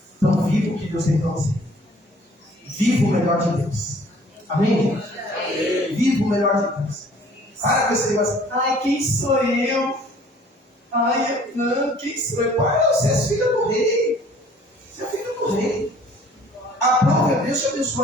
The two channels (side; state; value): both; normal; correlation 0.54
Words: Então viva o que Deus tem para você. Viva o melhor de Deus. Amém, gente? Viva o melhor de Deus. Para com esse negócio. Ai, quem sou eu? Ai, não, quem sou eu? Pai, você é filha do rei. Você é filha do rei. A prova é Deus te